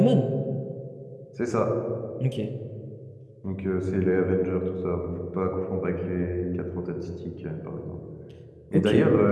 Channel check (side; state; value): both; identical; correlation 1.00